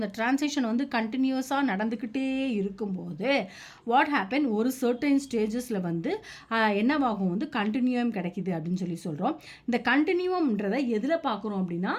டிரான்சிஷன் வந்து கண்டினியூஸாக நடந்துக்கிட்டே இருக்கும்போது வாட் ஹேப்பன் ஒரு சர்டைன் ஸ்டேஜஸில் வந்து என்னவாகும் வந்து கண்டினியூம் கிடைக்கிது அப்படின்னு சொல்லி சொல்கிறோம். இந்த கண்டினியூம்ன்றதை எதில் பார்க்குறோம் அப்படின்னா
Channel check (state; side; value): identical; both; correlation 1.00